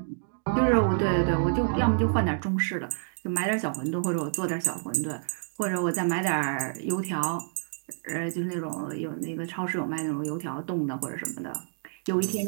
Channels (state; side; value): silent; left; digital silence